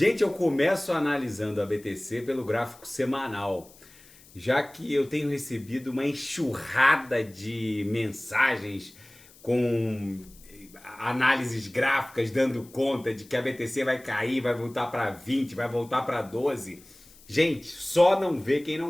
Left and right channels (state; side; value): noise; left; hiss, 24 dB below the sound